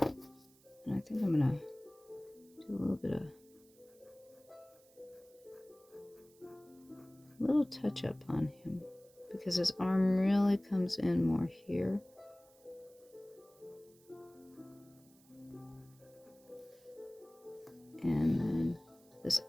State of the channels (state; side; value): noise; right; hiss, 28 dB below the sound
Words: I think I'm gonna do a little touch up on him because his arm really comes in more here. And then this